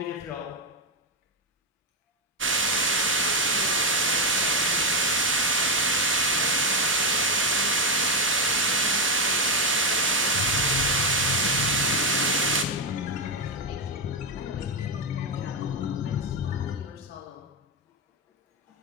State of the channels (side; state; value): both; normal; correlation 0.05